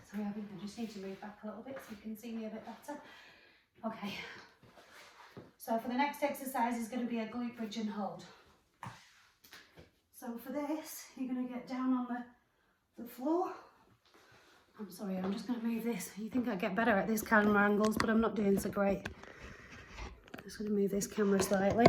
sorry, I think I just need to move back a little bit so you can see me a bit better. Okay, so for the next exercise is going to be a glute bridge and hold. So for this, you're going to get down on the floor. I'm sorry, I'm just going to move this. You think I get better at this camera angles, but I'm not doing so great. I'm just going to move this camera slightly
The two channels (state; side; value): identical; both; correlation 1.00